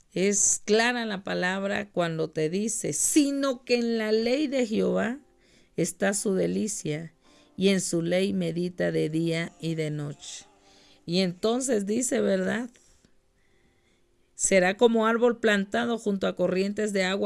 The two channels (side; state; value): both; identical; correlation 1.00